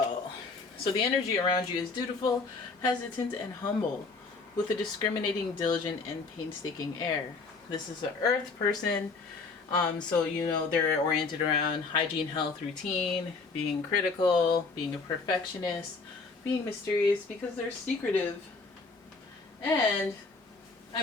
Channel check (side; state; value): right; quieter; 4.2 dB